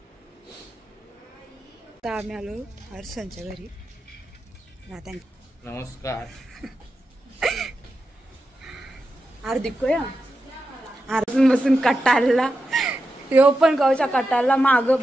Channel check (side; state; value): both; normal; correlation 0.89